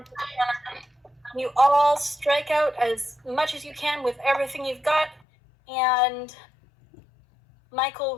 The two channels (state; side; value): drops out; right; at 5.2 s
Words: You all strike out as much as you can with everything you've got, and